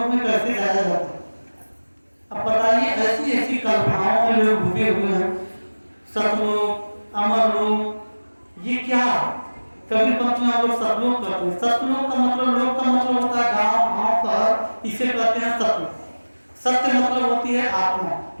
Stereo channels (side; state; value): both; inverted; correlation -1.00